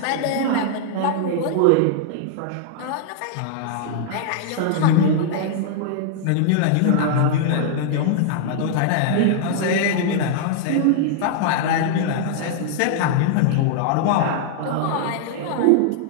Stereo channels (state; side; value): different; both; correlation -0.01